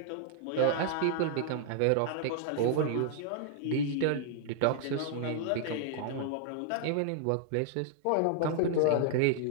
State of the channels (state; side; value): different; both; correlation -0.01